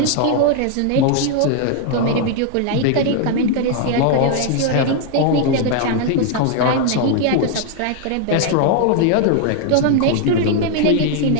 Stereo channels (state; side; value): different; both; correlation 0.00